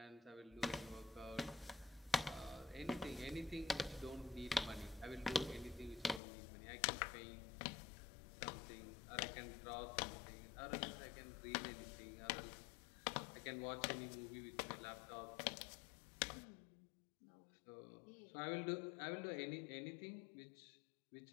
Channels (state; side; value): drops out; right; at 6.2 s